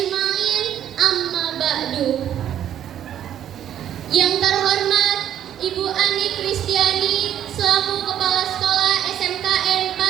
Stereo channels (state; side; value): quieter; left; 10.5 dB